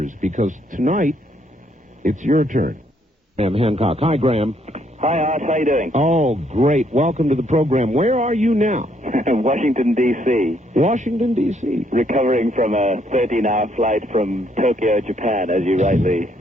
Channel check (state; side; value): normal; both; correlation 0.70